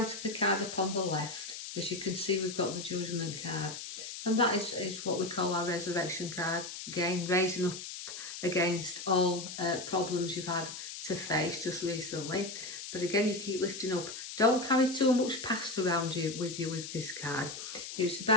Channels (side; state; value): left; noise; hiss, 9 dB below the sound